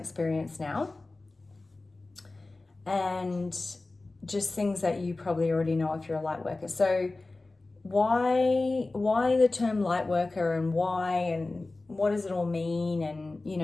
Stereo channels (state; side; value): quieter; right; 3.2 dB